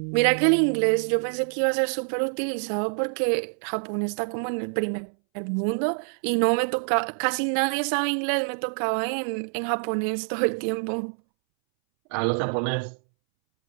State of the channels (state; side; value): silent; left; 61 dB below the other